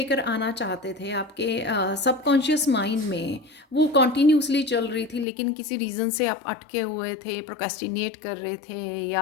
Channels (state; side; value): drops out; right; at 5.2 s